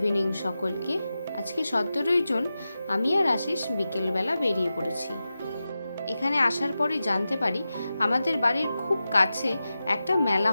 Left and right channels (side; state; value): both; inverted; correlation -0.92